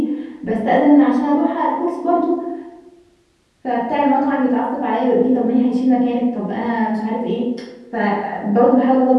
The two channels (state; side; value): identical; both; correlation 1.00